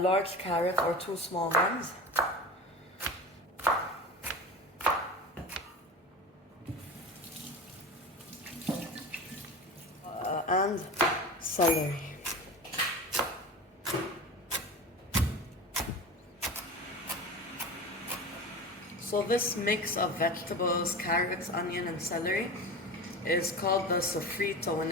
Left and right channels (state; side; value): normal; both; correlation 0.31